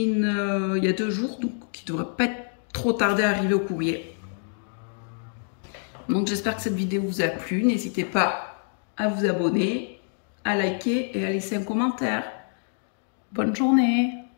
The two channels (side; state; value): right; silent; 58 dB below the other